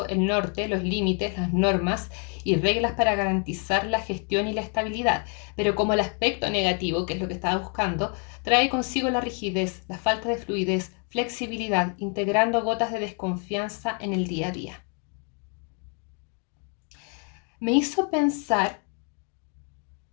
el norte, los límites, las normas y reglas para garantizar la gestión y la estabilidad. Pero como el aspecto negativo, que es lo que estaba buscando, trae consigo la rigidez, la falta de fluidez, flexibilidad, integrando gotas de desconfianza en el día a día. Me hizo pensar,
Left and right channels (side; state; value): right; quieter; 39.0 dB